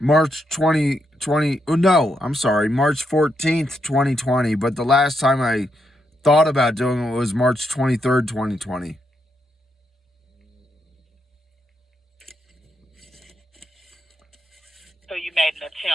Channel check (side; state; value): both; normal; correlation 0.80